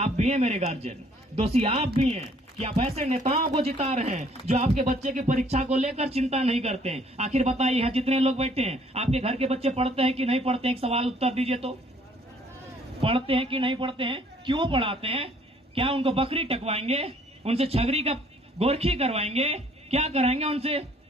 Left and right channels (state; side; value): normal; both; correlation 0.61